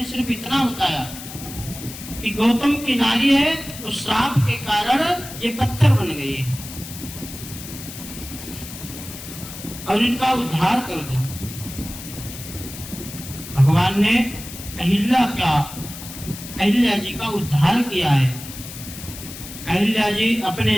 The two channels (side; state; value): left; noise; hiss, 12 dB below the sound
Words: सिर्फ इतना बताया कि गौतम की नारी है तो श्राप के कारण ये पत्थर बन गई है। और इनका उद्धार कर दो। भगवान ने अहिल्या जी का उद्धार किया है। अहिल्या जी